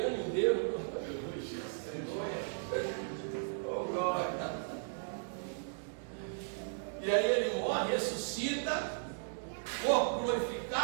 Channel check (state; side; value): silent; left; digital silence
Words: o dedo, oh glória. E aí ele morre, ressuscita, corpo